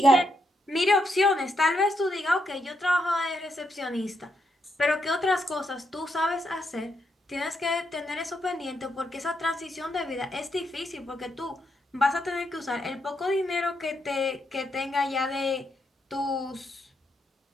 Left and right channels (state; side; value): normal; both; correlation 0.80